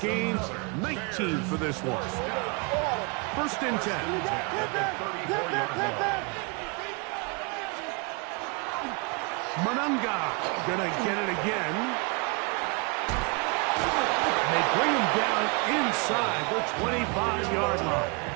gains, 19 for this one. First and 10. Monunga gonna get it again. And they bring him down inside the 25-yard line.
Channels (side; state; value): left; quieter; 32.0 dB